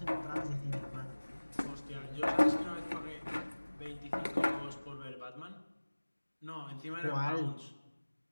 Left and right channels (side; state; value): both; inverted; correlation -1.00